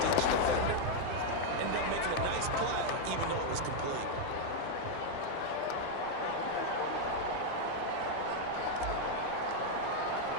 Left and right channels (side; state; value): both; different; correlation 0.00